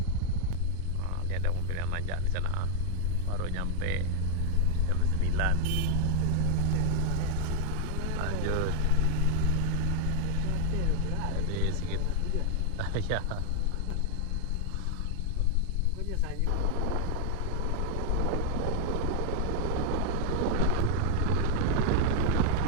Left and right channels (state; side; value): different; both; correlation 0.00